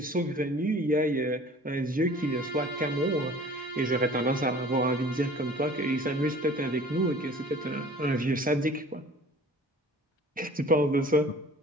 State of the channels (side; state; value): both; normal; correlation 0.47